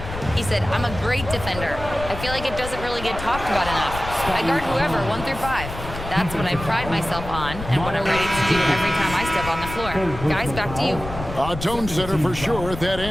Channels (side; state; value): left; noise; rumble, 9 dB below the sound